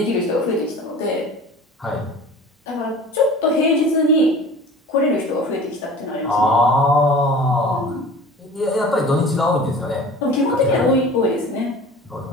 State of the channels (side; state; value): both; normal; correlation 0.41